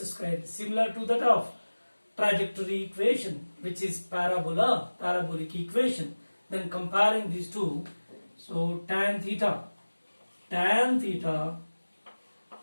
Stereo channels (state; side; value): inverted; both; correlation -1.00